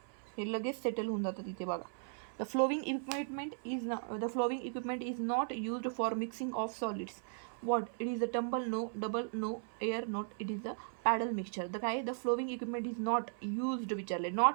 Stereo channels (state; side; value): silent; left; 53 dB below the other